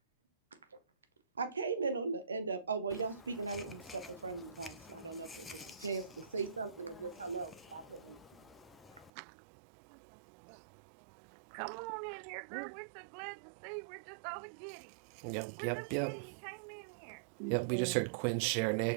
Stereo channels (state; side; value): drops out; left; at 9.1 s